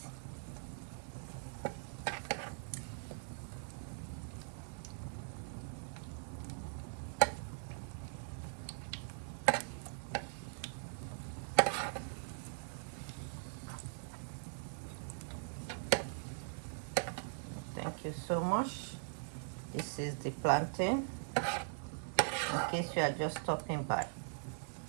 Thank you so much. This is the plantain. In case you are just stopping by,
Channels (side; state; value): left; silent; digital silence